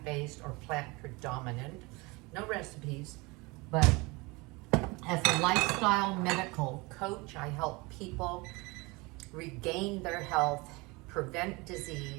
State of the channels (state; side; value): quieter; left; 25.2 dB